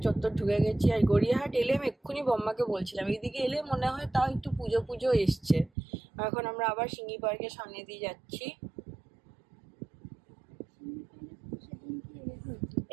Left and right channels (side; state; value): left; drops out; at 5.7 s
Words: চত্বর ঢুকে গেছি, আর গড়িয়াহাট এলে আমি এক্ষুনি বোম্মাকে বলছিলাম এইদিকে এলে মনে হয় তাও একটু পুজো পুজো এসছে। এখন আমরা আবার সিঙ্গি পার্কের সামনে দিয়ে যাচ্ছি।